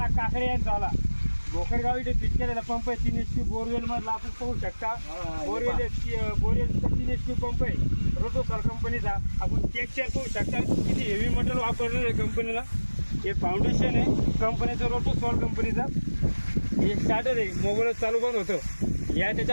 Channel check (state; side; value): inverted; both; correlation -1.00